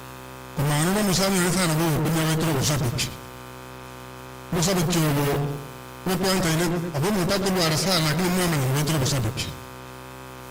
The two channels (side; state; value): both; identical; correlation 1.00